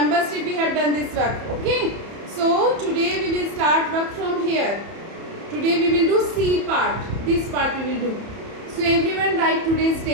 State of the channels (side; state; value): left; late; 30 ms